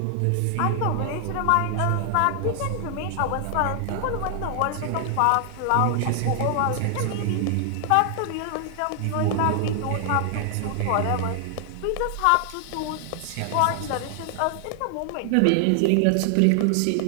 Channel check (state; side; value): different; both; correlation 0.00